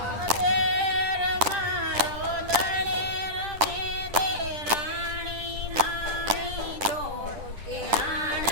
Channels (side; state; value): left; late; 10 ms